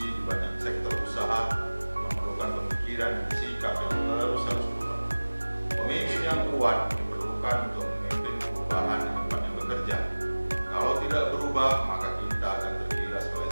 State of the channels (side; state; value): both; inverted; correlation -1.00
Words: di banyak sektor usaha memerlukan pemikiran dan sikap yang terus harus berubah. Pemimpin yang kuat diperlukan untuk memimpin perubahan di tempat yang bekerja. Kalau tidak berubah, maka kita akan tergilas oleh